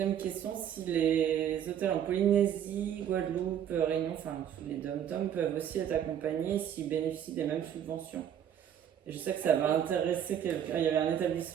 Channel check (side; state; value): left; quieter; 9.6 dB